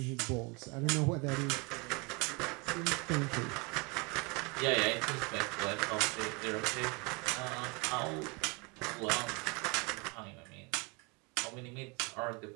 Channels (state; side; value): quieter; left; 29.1 dB